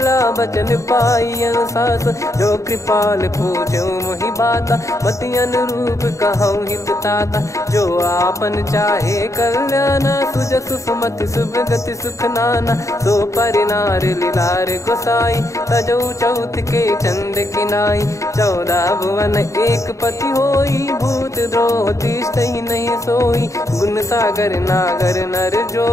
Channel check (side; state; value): right; late; 0.15 ms